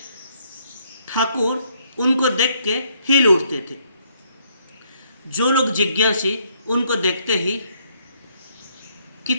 ठाकुर उनको देख के हिल उठते थे। जो लोग जिज्ञासी, उनको देखते ही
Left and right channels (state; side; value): inverted; both; correlation -0.69